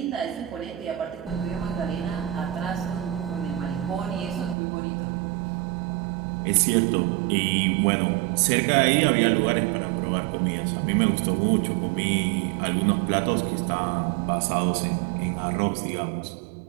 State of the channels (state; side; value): drops out; left; at 4.5 s